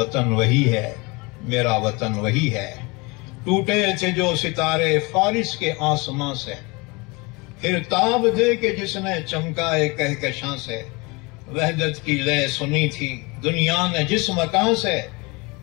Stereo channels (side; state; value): right; quieter; 26.6 dB